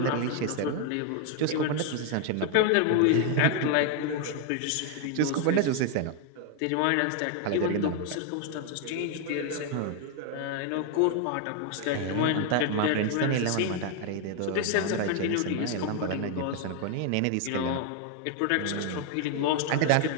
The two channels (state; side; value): different; both; correlation 0.00